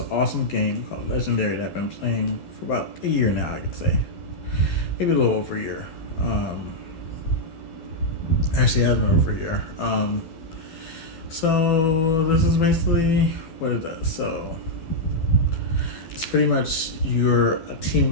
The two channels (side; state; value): right; late; 12 ms